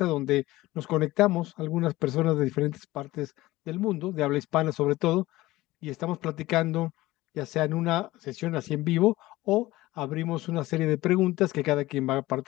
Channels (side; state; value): right; quieter; 18.1 dB